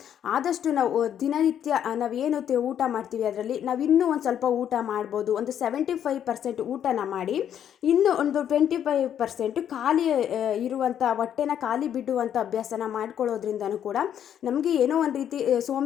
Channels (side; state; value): right; quieter; 9.6 dB